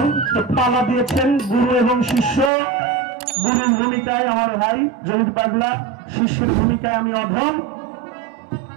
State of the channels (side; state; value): left; drops out; at 2.5 s